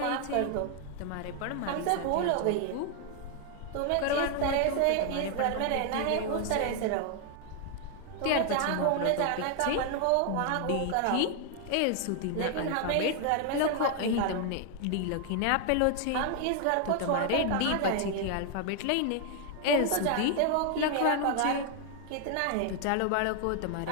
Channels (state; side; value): different; both; correlation 0.00